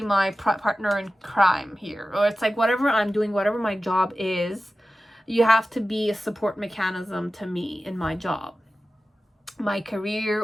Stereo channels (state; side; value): normal; both; correlation 0.94